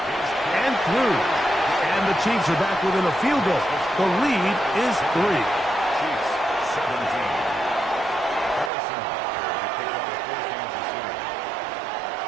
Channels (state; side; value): drops out; left; at 8.7 s